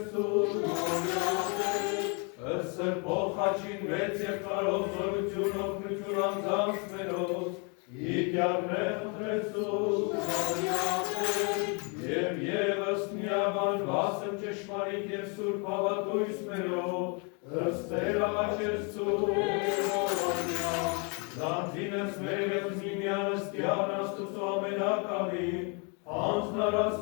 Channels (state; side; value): quieter; right; 34.9 dB